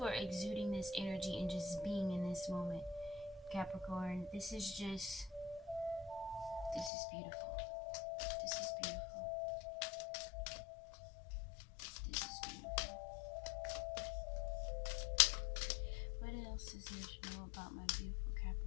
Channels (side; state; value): right; drops out; at 6.9 s